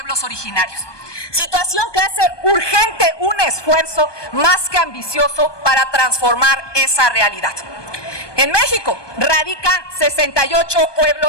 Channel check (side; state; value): right; late; 1.2 ms